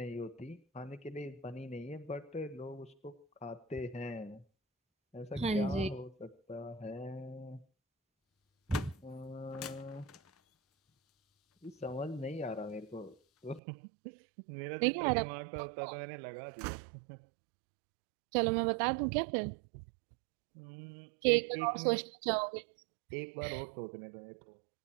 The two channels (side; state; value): left; drops out; at 13.6 s